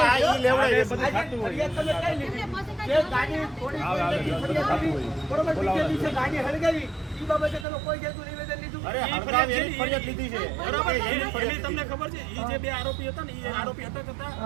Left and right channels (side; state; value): left; drops out; at 7.7 s